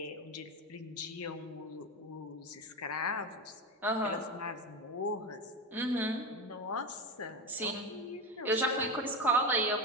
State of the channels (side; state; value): both; normal; correlation 0.20